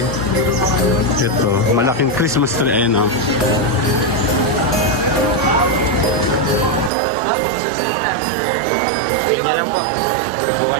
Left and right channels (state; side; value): drops out; left; at 6.9 s